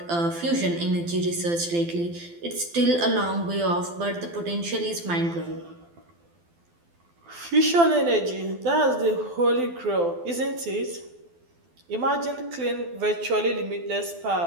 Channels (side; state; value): left; late; 12 ms